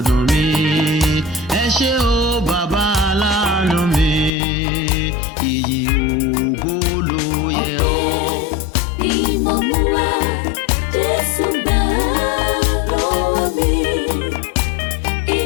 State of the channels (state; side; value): drops out; right; at 4.3 s